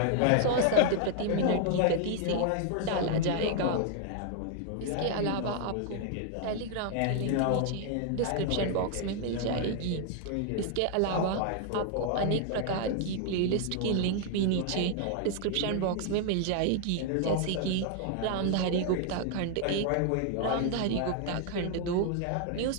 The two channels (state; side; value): different; both; correlation 0.00